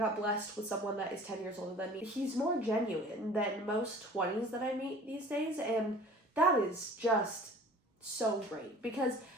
blessed with someone that is 10 years older than me. He's more genuine than most 20s that I meet these days, and that is just so great, because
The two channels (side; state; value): both; normal; correlation 0.46